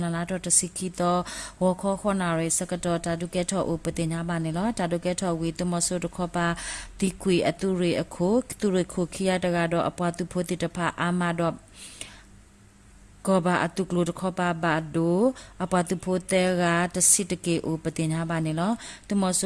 လာတော့တစီကီတော့ဝခောခောနာရေစကတော်တာဒုကေထောဥပတင်ညာပါနေလောတာဒုကေထောဝီတမဆူတခောပါဒီကွေအတုရေအခုသူရေခုခီယတကတော့အပတုဖိုတေတဖအာမတော့ကောဘာအတုကလုတခောပါဘာဒိုအပတုဖိုတေရာတစီတကေဥပတင်ညာပါနေလောတမဆ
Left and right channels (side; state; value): both; identical; correlation 1.00